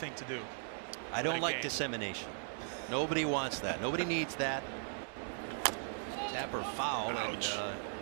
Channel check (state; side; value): silent; left; digital silence